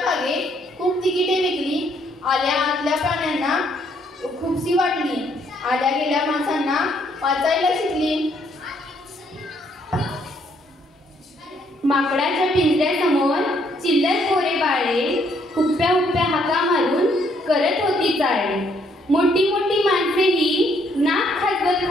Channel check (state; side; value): normal; both; correlation 0.69